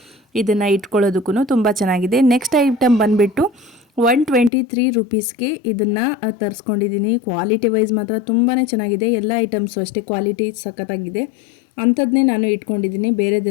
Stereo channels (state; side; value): drops out; right; at 4.5 s